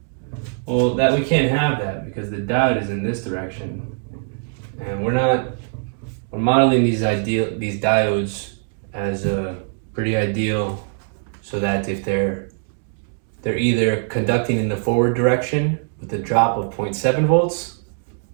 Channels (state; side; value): silent; left; 62 dB below the other